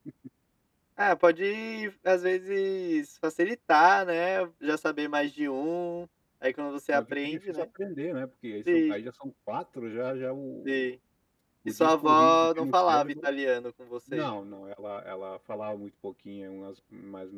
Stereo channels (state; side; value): identical; both; correlation 1.00